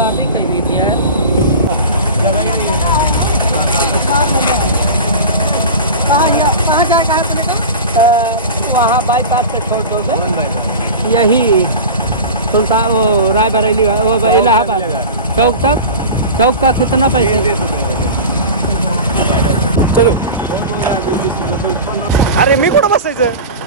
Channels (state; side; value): inverted; both; correlation -0.31